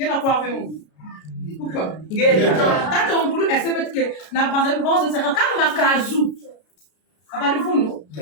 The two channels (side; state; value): right; late; 33 ms